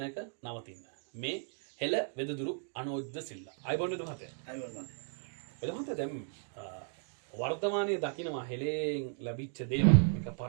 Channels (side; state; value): left; silent; 54 dB below the other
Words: නවතින්න. මේ හෙළ වෙදදුරු අනෝජ්ද සිල්ලා. අයිබෝන් වෙද මහත්තයා. අයිබෝන්. වෙද මහත්තයා දැන් වර්තමානයේ දකින්නවා හෙළෙන් ලැබිච්ච දේවල්. මේක